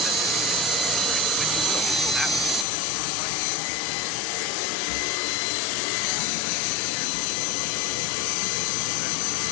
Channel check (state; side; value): drops out; right; at 2.7 s